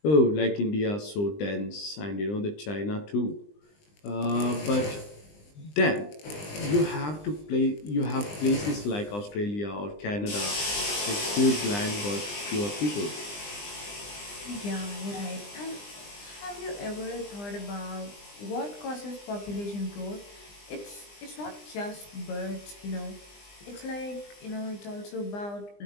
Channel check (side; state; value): right; late; 20 ms